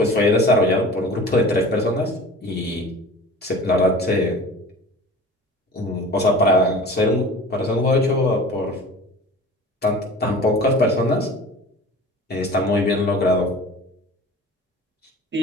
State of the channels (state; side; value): normal; both; correlation 0.40